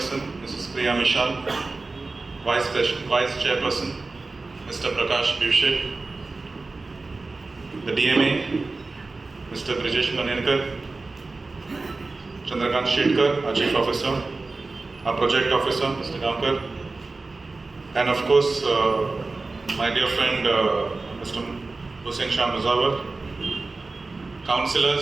Mrs. Priya Mishal, Vice Chairperson, Mr. Prakash Bivshe, the DMA, Mr. Brijesh Manenkar, Chandrakant Shetkar, our Chief Officer, our Project Officer, Mr. Gamkar, and of course, my dear friend, Mr. Hussain Shah Muzawar,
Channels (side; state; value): left; quieter; 3.6 dB